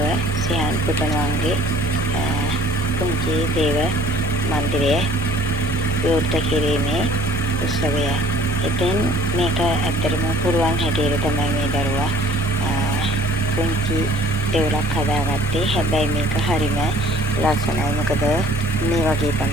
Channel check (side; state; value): left; noise; rumble, 21 dB below the sound